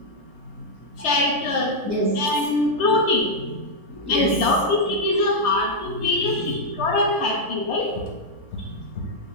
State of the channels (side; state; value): left; late; 4.0 ms